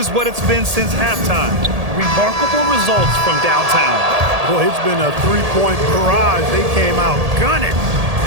what it's been since halftime. Remarkable results from downtown. Boy, it's been a three-point barrage. They came out gunning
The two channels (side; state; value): left; late; 1.8 ms